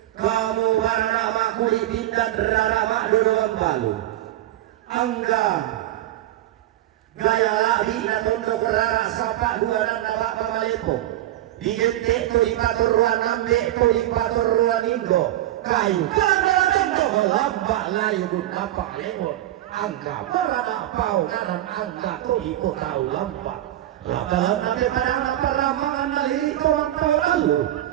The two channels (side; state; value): left; quieter; 14.1 dB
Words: kamu warna makuli pindah rara mak dodoan balu angga gaya lahi na tondo kerara sapa dua nanda bapa malepo digente to ipator ruan ambe to ipator ruan indo kayu kada tondo lambak layu dun apa lemot angga berana pau kanan angga to iko tahu lambak dalam nanti pada peramangan naliri kawan tahu lalu